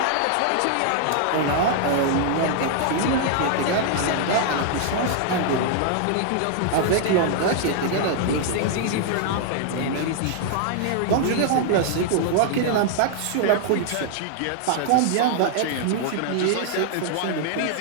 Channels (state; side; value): different; both; correlation 0.00